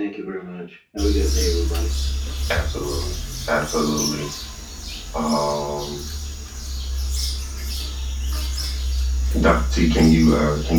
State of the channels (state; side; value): identical; both; correlation 1.00